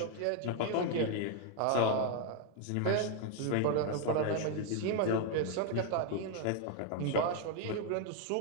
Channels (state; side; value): different; both; correlation 0.00